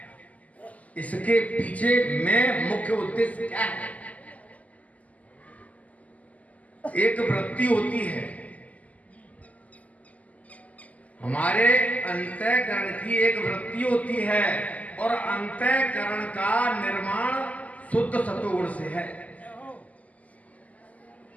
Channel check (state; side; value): late; right; 0.073 ms